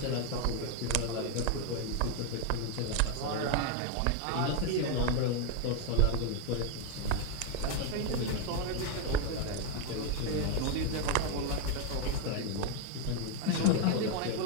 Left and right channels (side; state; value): both; different; correlation 0.01